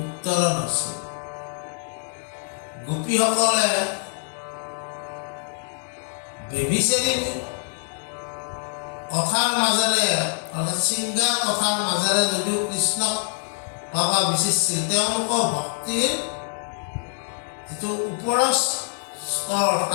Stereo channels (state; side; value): silent; right; 60 dB below the other